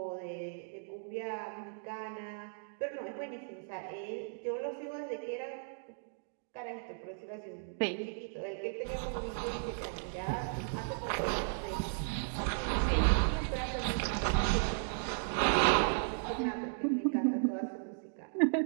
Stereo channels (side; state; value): left; silent; digital silence